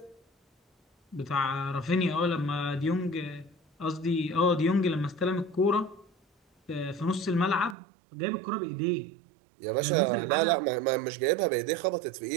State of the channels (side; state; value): left; drops out; at 7.8 s